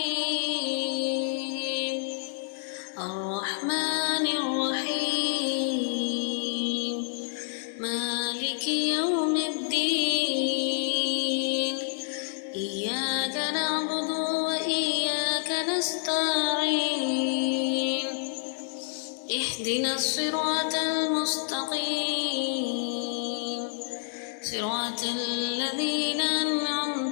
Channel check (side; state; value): right; silent; digital silence